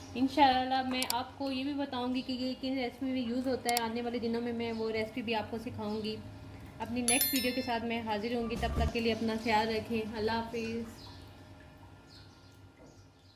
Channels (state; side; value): identical; both; correlation 1.00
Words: इंशाल्लाह मैं आपको ये भी बताऊंगी कि ये किस रेसिपी में यूज़ होता है। आने वाले दिनों में मैं वो रेसिपी भी आपको सिखाऊंगी। अपनी नेक्स्ट वीडियो के साथ मैं हाजिर होंगी। तब तक के लिए अपना ख्याल रखें। अल्लाह हाफिज़।